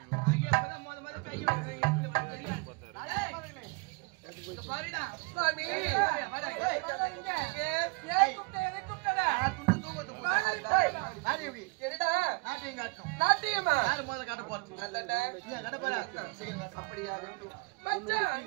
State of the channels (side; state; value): left; quieter; 29.2 dB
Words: ஐயா அப்பதான் முத கை வைக்கிறீங்க. பாருடா பாவி நாட்டியமா யாரு முதல்ல காட்ட போறது? காட்ட போறா அப்படியா?